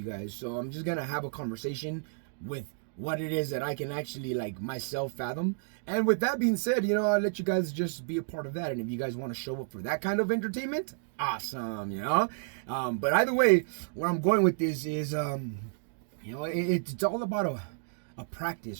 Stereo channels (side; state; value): left; silent; digital silence